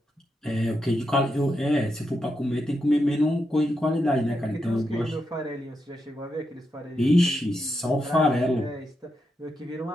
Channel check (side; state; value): both; normal; correlation 0.85